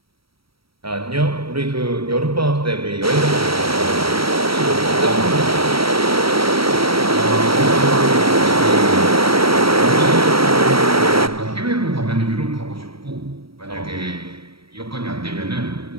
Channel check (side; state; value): left; late; 0.75 ms